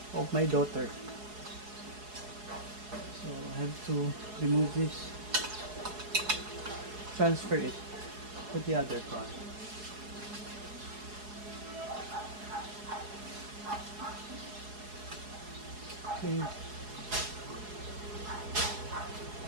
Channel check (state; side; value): late; left; 4.8 ms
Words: of my daughter. So I have to remove this, transfer it to the other car. Okay.